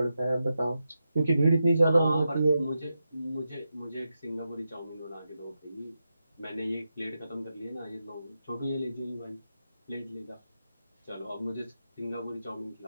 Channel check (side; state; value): both; inverted; correlation -0.88